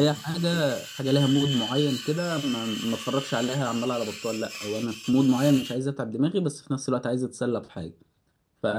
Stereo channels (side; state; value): both; identical; correlation 1.00